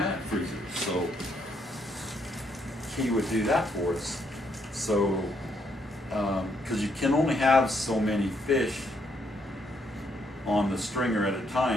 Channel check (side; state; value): both; normal; correlation 0.73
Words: freezer. So he would do that for us. So, because you can only have so many fish on the stringer at a